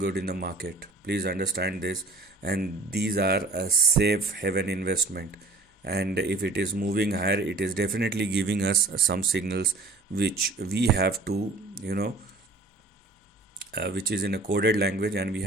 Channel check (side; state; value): left; quieter; 3.2 dB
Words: in the market, please understand this. And these are a safe haven investment, and if it is moving higher, it is definitely giving us some signals which we have to which is in a coded language, and we